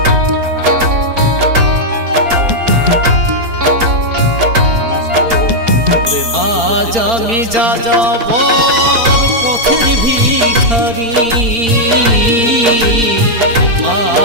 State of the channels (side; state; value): left; late; 4.4 ms